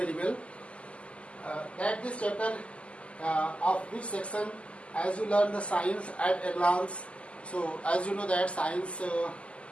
well that this chapter of which section, as you learn the science at a glance. So as you know that science,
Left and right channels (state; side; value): late; right; 0.057 ms